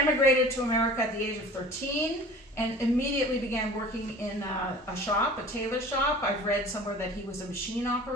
to America at the age of 13, and immediately began working in a shop, a tailor shop. I've read somewhere that he was a machine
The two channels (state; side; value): normal; both; correlation 0.43